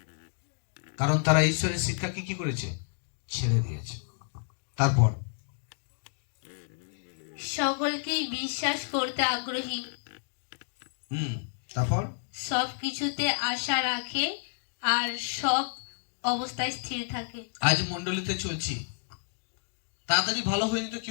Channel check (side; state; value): right; silent; digital silence